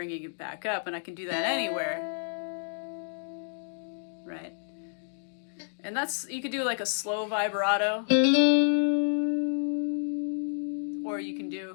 it back up, and I can do that anywhere, right? And you could do a slow vibrato, or you can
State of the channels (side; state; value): right; silent; digital silence